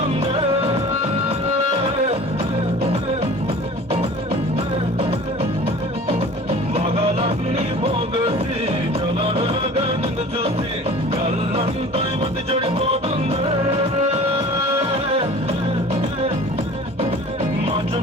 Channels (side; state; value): both; normal; correlation 0.43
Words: మగలన్నీ పోగేసి చలనగా నిన్ను చూసి కళ్ళంతా మతి చెడిపోతుంది.